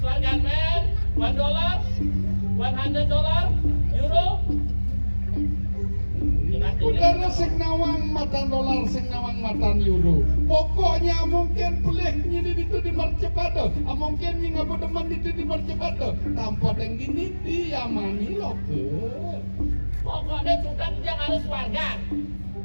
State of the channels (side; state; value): both; inverted; correlation -1.00